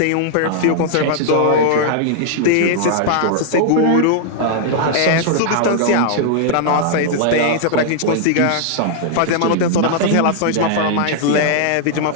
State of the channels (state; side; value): different; both; correlation -0.01